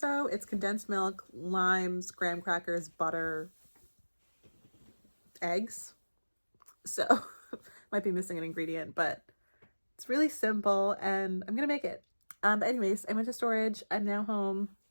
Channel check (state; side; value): inverted; both; correlation -1.00